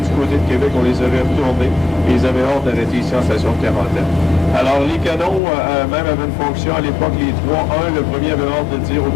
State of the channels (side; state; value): right; drops out; at 5.4 s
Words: du côté de Québec, on les aurait retournés et ils avaient hâte d'arrêter ici en station de quarantaine. Alors, les canons, même avaient une fonction à l'époque, les trois. Un, le premier avait hâte de dire au